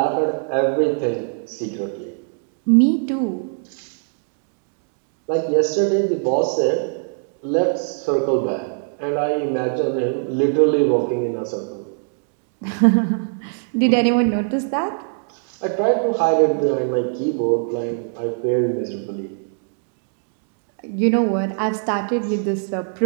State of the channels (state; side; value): silent; left; digital silence